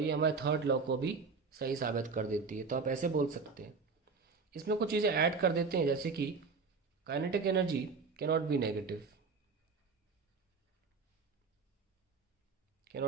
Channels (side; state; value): left; quieter; 4.7 dB